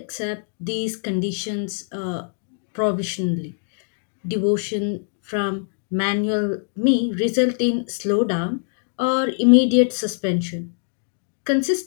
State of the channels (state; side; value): silent; right; digital silence